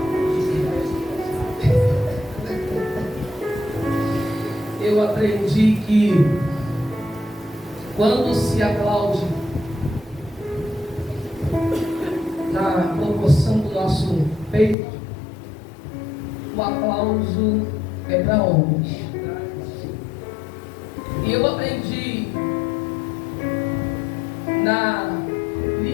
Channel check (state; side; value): drops out; right; at 14.8 s